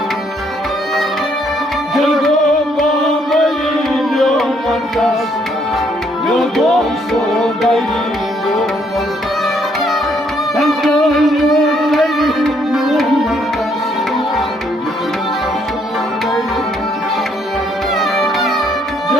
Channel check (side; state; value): both; normal; correlation 0.69